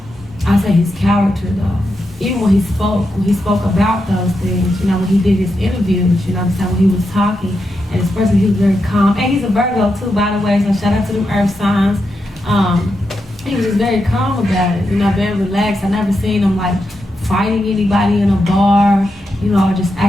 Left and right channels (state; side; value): normal; both; correlation 0.86